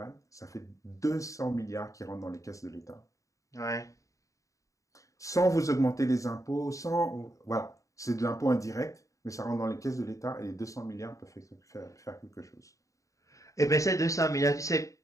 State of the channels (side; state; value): right; late; 0.16 ms